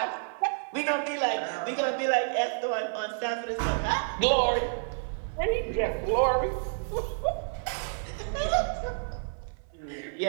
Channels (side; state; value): left; silent; 55 dB below the other